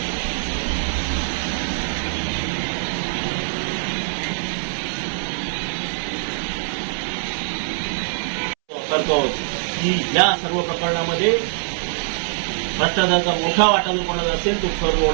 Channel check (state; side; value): silent; left; 64 dB below the other